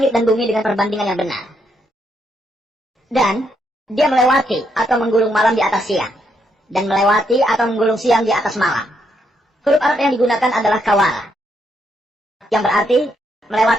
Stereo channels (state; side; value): normal; both; correlation 0.77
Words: dan bumi dengan perbandingan yang benar. Dan dia melewati atau menggulung malam di atas siang. Dan melewati atau menggulung siang di atas malam. Huruf Arab yang digunakan adalah kawala, yang berarti